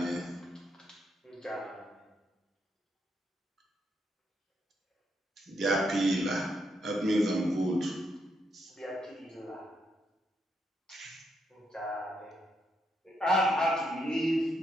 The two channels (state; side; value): normal; both; correlation 0.79